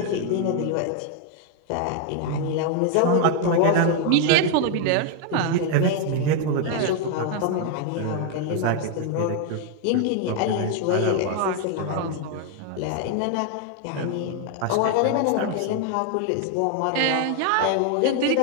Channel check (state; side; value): different; both; correlation 0.00